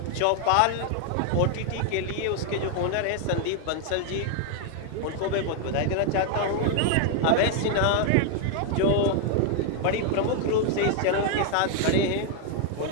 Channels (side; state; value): both; different; correlation 0.00